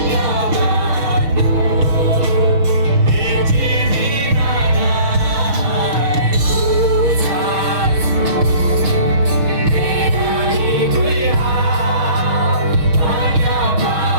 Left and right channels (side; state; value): left; late; 6.2 ms